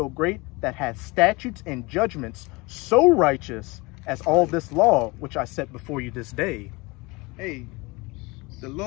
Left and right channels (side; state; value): right; quieter; 24.9 dB